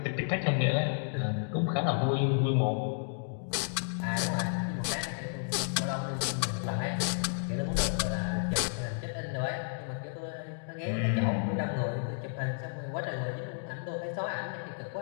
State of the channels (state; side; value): silent; right; digital silence